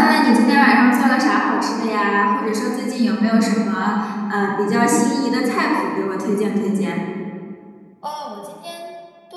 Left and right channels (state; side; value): identical; both; correlation 1.00